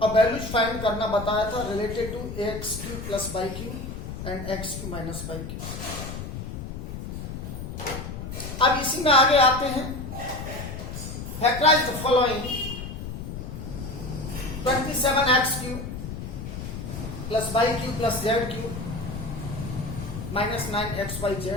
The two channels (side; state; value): left; noise; rumble, 7 dB below the sound